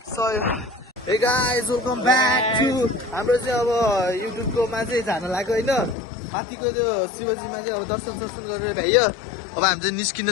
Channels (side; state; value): right; drops out; at 6.0 s